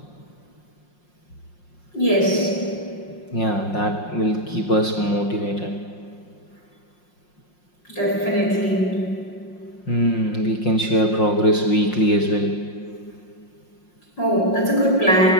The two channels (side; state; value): right; late; 5.6 ms